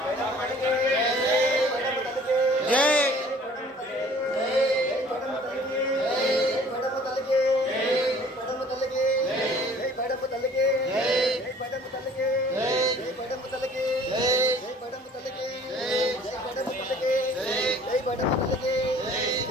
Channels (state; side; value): normal; both; correlation 0.53